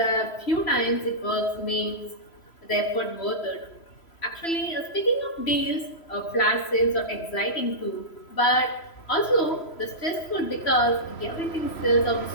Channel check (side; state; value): right; late; 3.0 ms